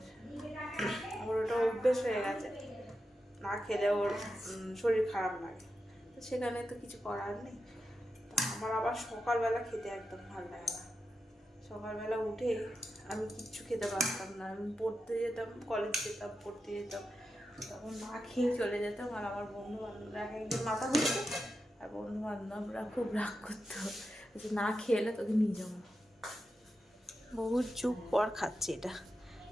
ওর ওটা অভ্যেস হয়ে গেছে, না খেলে ওর শরীর খারাপ লাগে। তো সেখানে তো কিছু করার নেই। তো আমার আবার সকালবেলা খেতে একদম ভালো লাগে না। সকালবেলা উঠে আমি কিচ্ছু খেতে পারতাম না। আমি পড়তে যেতাম, কলেজ যেতাম, পড়তে যেতাম, তখন না খেয়ে চলে যেতাম। আর আমার বন্ধু বান্ধবরা এক একদিন মাথা ঘুরতো, আর বন্ধু বান্ধবরা খুব রাগ করতো যে না খেলে তোকে নিয়ে যাবো। বহু যুগ পর খাচ্ছি এটা,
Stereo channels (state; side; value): normal; both; correlation 0.89